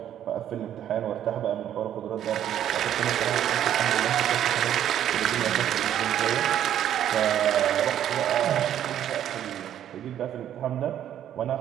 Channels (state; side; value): quieter; left; 10.7 dB